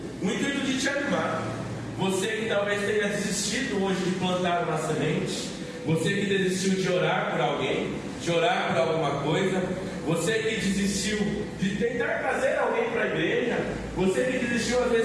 intuito de te animar. Você que talvez tenha desistido hoje de plantar uma semente, você que desistiu de orar por alguém, de orar por alguma coisa, você que desistiu de tentar trazer alguém para a igreja, você que desistiu às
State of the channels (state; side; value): identical; both; correlation 1.00